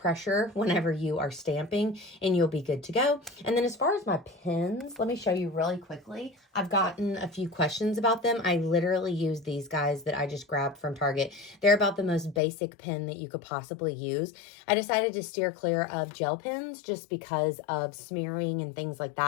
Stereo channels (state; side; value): drops out; right; at 12.4 s